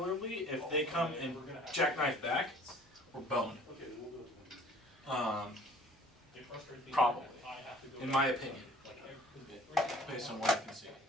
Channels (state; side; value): normal; both; correlation 0.51